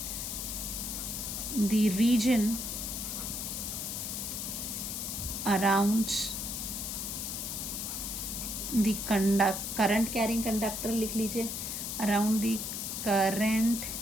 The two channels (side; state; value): left; noise; hiss, 4 dB below the sound